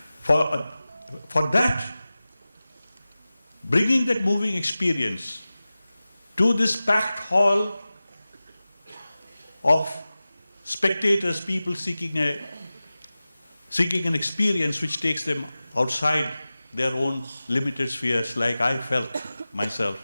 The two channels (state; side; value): inverted; both; correlation -0.96